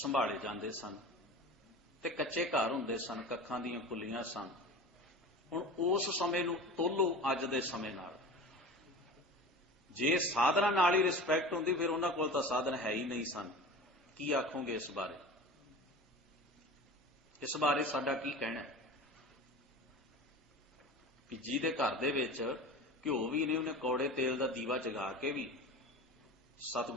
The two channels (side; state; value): both; normal; correlation 0.34